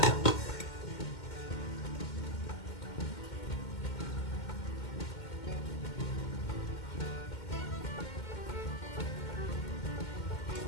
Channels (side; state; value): right; late; 2.1 ms